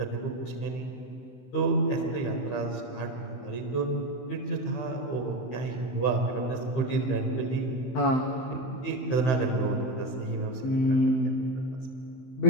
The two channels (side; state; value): right; late; 16 ms